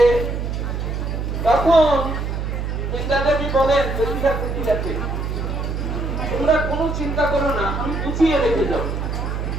তখন বৃন্দা দেবী বলেন জটিলা কুটিলাকে, তোমরা কোনো চিন্তা করো না, আমি গুছিয়ে রেখে যাবো।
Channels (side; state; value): right; noise; hum, 3 dB below the sound